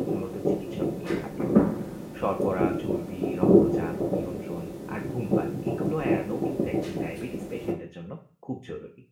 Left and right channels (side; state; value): both; identical; correlation 1.00